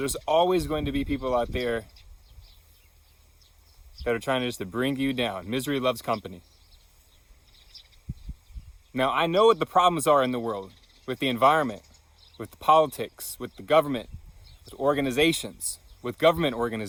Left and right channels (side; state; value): both; identical; correlation 1.00